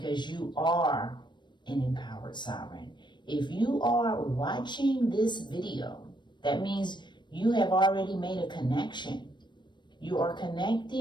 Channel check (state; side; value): late; right; 0.22 ms